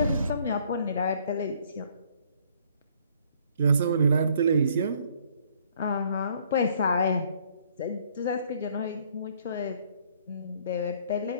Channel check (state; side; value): inverted; both; correlation -0.62